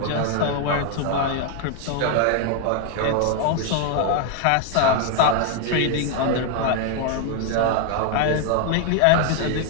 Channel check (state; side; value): different; both; correlation 0.00